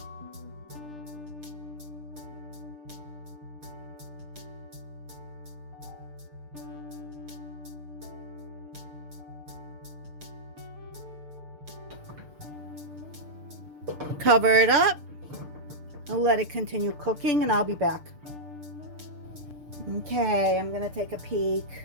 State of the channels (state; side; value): late; left; 6.7 ms